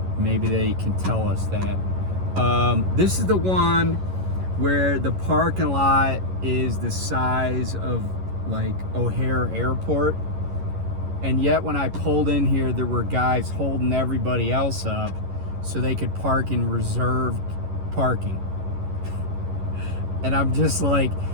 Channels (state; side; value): late; left; 11 ms